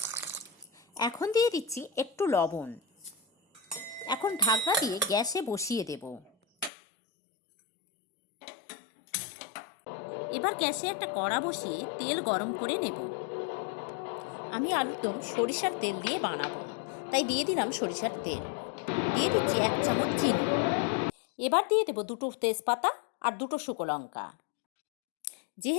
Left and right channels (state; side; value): drops out; right; at 6.7 s